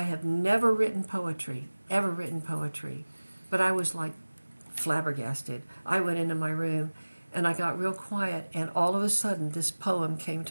have never written poetry, ever written poetry. But I was like flabbergasted. I went into my room, and I got real quiet, and all of a sudden this poem came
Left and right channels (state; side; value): inverted; both; correlation -1.00